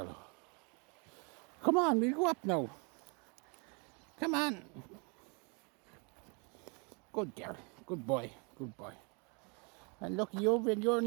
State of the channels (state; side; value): quieter; left; 33.3 dB